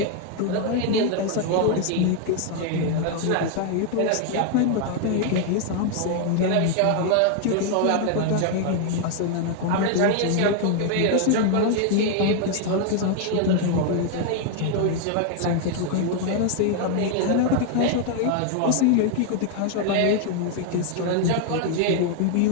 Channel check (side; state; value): both; different; correlation 0.00